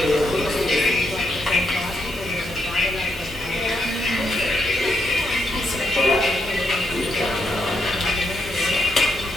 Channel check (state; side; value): normal; both; correlation 0.78